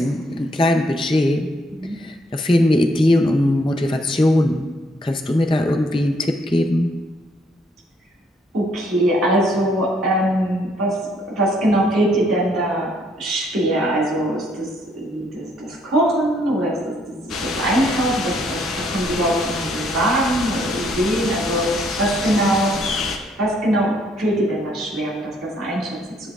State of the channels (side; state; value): both; normal; correlation 0.69